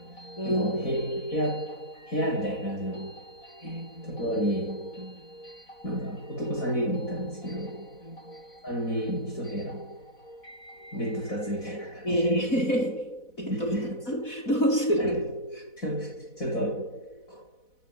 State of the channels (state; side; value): late; right; 4.1 ms